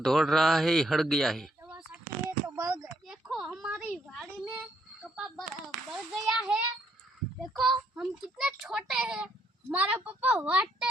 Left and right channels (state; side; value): normal; both; correlation 0.72